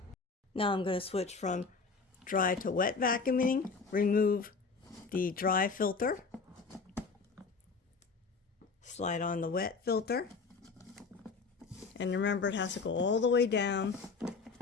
Now I'm going to switch from dry to wet vacuuming, remove the dry filter, slide on the wet filter, and remember it has to go all the way down.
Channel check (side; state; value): right; quieter; 4.6 dB